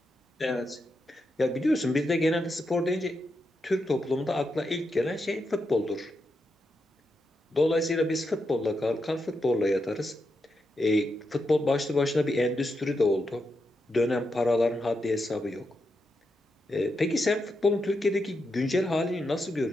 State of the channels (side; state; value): both; normal; correlation 0.85